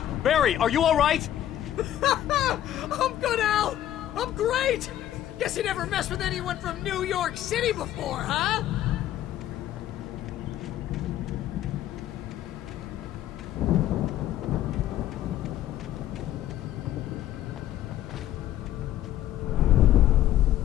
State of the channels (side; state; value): right; quieter; 12.4 dB